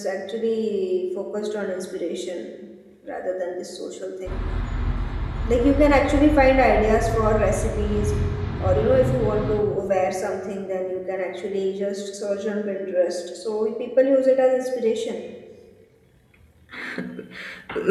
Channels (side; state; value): both; identical; correlation 1.00